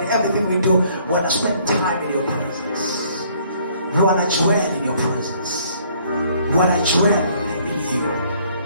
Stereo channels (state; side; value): inverted; both; correlation -0.62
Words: in everything we do. We want to spend time in your presence. We want to dwell in your presence. We want to dwell in you.